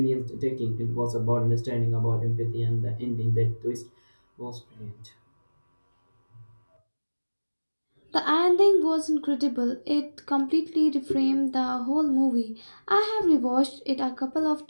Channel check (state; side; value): inverted; both; correlation -1.00